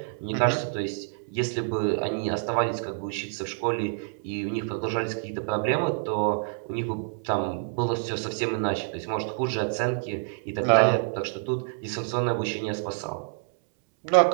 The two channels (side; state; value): left; silent; 60 dB below the other